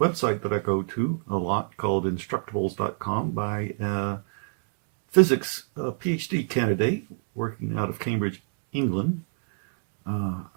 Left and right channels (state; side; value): silent; left; digital silence